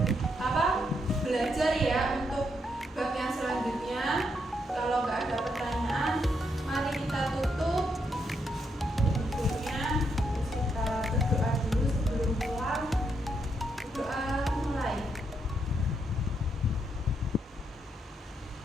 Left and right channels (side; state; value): both; normal; correlation 0.78